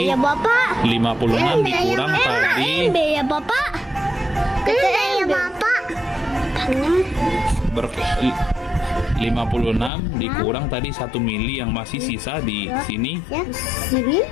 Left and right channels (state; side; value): drops out; right; at 9.9 s